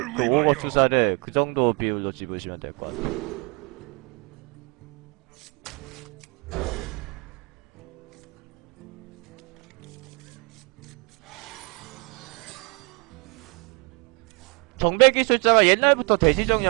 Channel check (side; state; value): left; quieter; 31.8 dB